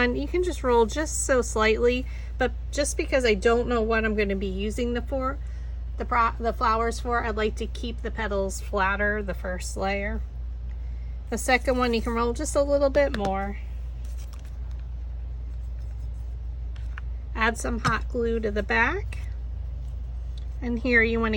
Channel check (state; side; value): identical; both; correlation 1.00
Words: you can just roll just so slightly, but just because I don't know what I'm going to be using the flowers for, I'd like to keep the petals flatter, the first layer. The second one, you can roll just a little bit more. Add some hot glue to the back. And here you want